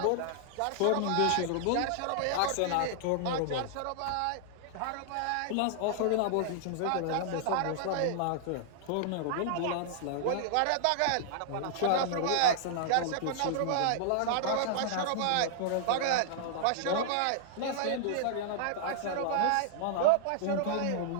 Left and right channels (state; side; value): different; both; correlation -0.01